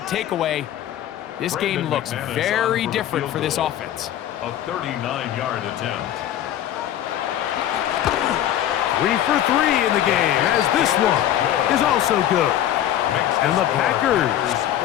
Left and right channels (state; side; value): quieter; right; 11.7 dB